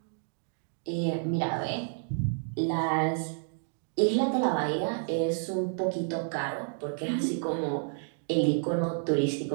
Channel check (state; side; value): silent; left; digital silence